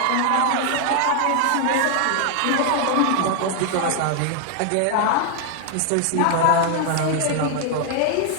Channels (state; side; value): different; both; correlation 0.00